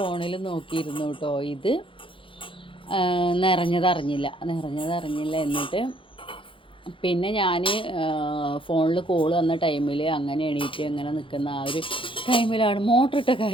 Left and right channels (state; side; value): late; right; 0.25 ms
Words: നോക്കിയിരുന്നു കേട്ടോ. ഇത് നിറഞ്ഞതറിഞ്ഞില്ല. എന്നിട്ട് പിന്നെ ഞാൻ ഫോണിൽ കോൾ വന്ന ടൈമിൽ അങ്ങനെ എണീറ്റ് അങ്ങനെ നിൽക്കുന്ന ആ ഒരു ടൈമിലാണ് മോട്ടർ ഇട്ട